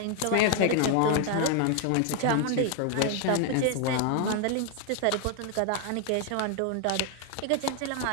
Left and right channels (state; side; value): different; both; correlation 0.00